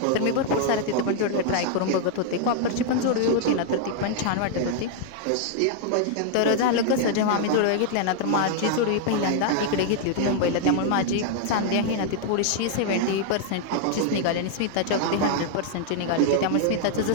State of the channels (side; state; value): both; different; correlation 0.00